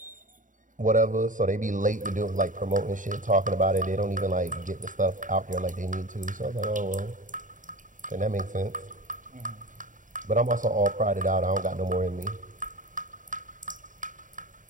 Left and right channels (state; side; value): late; left; 0.38 ms